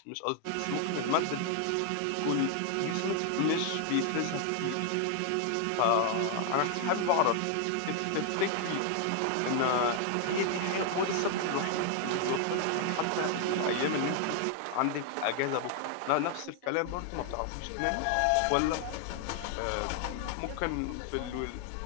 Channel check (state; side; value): different; both; correlation 0.00